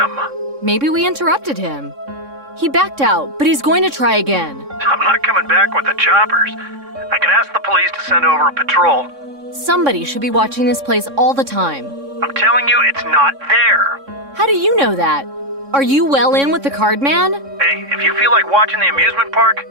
Maybe we interrupted him. He backed out, but he's going to try again. I'm not coming back with the choppers. I can ask the police to send over a patrol. Somebody should be watching this place all the time. I'm telling you, it's not there. How do you know that? Are you well in with the card man? Hey, if you feel like watching the amusement park,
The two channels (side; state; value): left; late; 3.6 ms